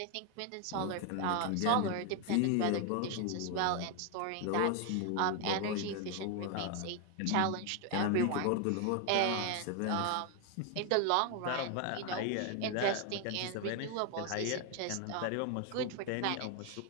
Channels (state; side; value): different; both; correlation 0.01